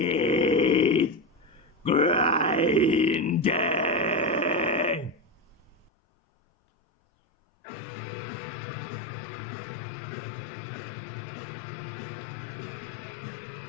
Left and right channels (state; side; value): drops out; right; at 5.9 s